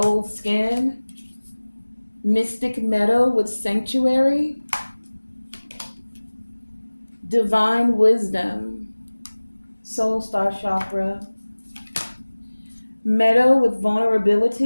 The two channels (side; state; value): both; inverted; correlation -1.00